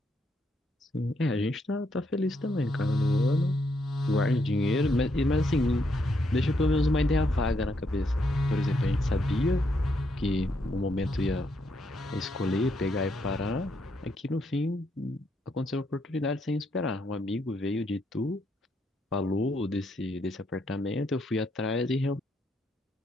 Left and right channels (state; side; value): normal; both; correlation 0.76